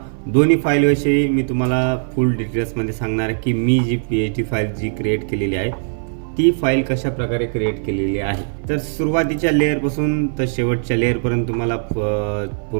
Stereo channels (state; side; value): silent; left; 57 dB below the other